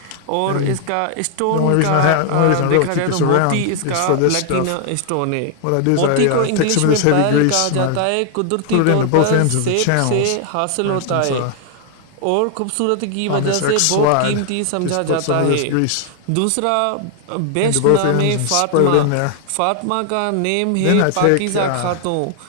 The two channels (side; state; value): both; different; correlation 0.00